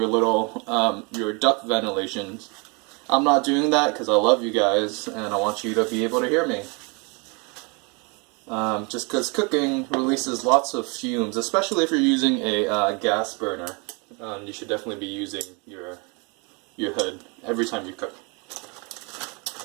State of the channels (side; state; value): left; quieter; 31.6 dB